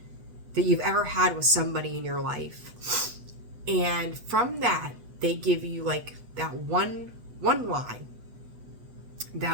that you've ever had with somebody in your life. And from that, they give you like that one line,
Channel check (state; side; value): late; left; 8.1 ms